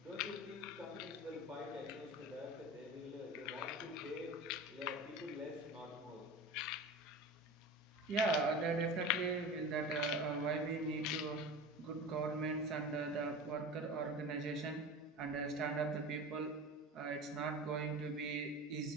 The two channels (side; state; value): both; normal; correlation 0.32